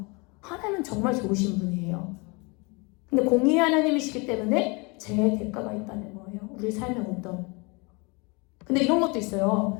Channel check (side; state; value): right; quieter; 29.1 dB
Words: 하나님은 정말 좋으신 분이에요. 근데 공의의 하나님이시기 때문에 죄의 대가가 있다는 거예요. 우리 삶에 근데 이런 것도 있어요.